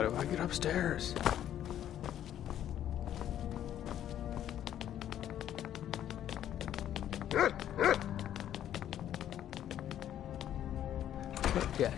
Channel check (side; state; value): right; quieter; 11.0 dB